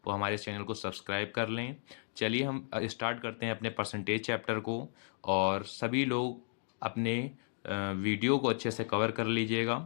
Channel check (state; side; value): silent; right; digital silence